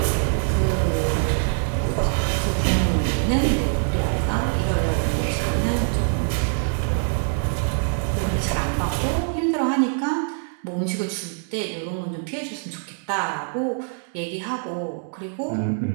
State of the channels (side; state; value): left; silent; 63 dB below the other